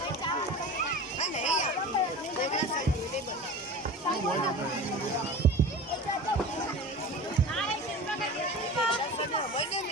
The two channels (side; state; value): both; normal; correlation 0.34